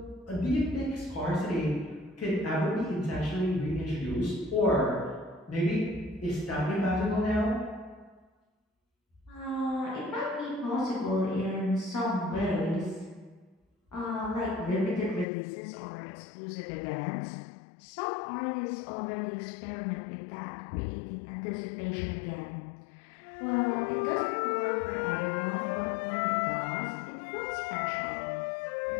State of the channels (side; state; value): right; drops out; at 15.2 s